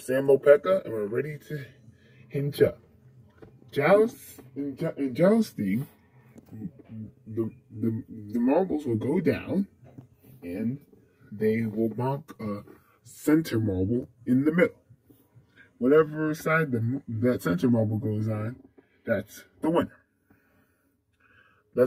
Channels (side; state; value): both; identical; correlation 1.00